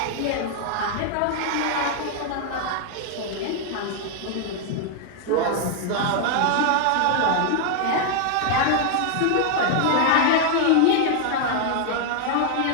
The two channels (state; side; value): different; both; correlation 0.00